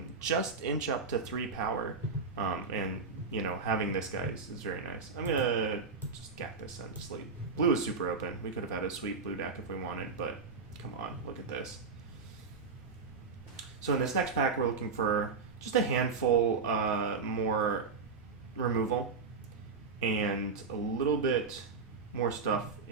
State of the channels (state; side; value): quieter; left; 4.8 dB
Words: just inch up to 3 power, and you know, having this guy is very nice. I'm gonna just gap this and sleep. Blue is super open. We could have had a sweet blue deck if we wanted, but come on, look at this. So in this next pack, we're looking for just a handful more removal and a little bit more stuff